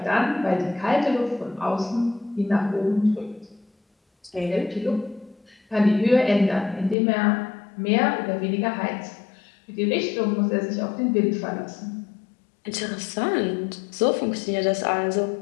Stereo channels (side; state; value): right; drops out; at 7.0 s